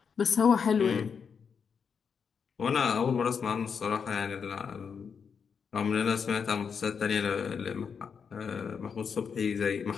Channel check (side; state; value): right; quieter; 6.4 dB